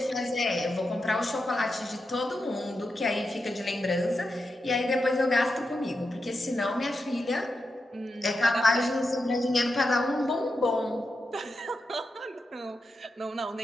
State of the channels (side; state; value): both; normal; correlation 0.88